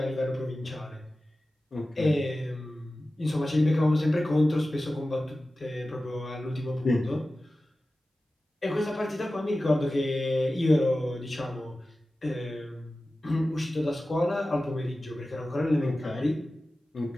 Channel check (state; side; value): normal; both; correlation 0.95